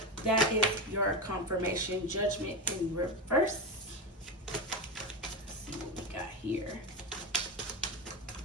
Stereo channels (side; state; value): both; normal; correlation 0.16